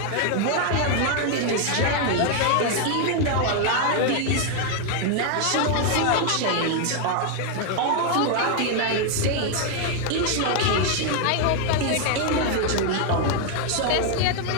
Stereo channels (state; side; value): different; both; correlation 0.00